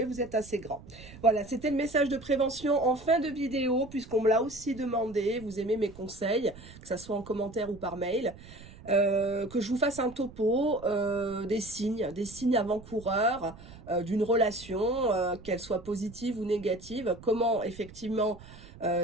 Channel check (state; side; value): noise; right; rumble, 18 dB below the sound